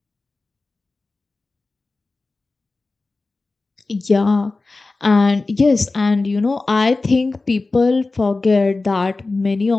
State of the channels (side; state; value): right; quieter; 3.5 dB